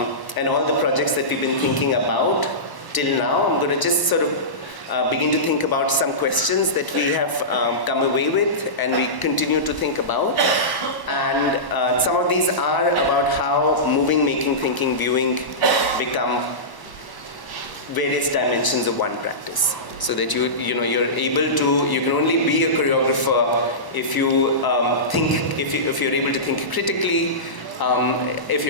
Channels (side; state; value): right; late; 1.1 ms